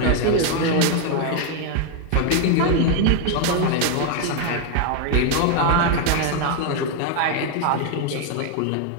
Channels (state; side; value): different; both; correlation 0.01